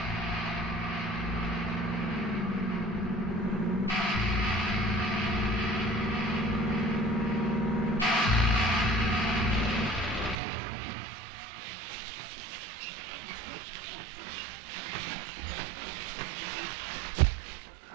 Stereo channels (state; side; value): drops out; left; at 10.4 s